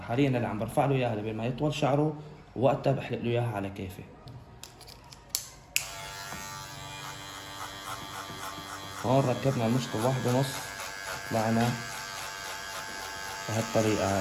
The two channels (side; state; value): both; identical; correlation 1.00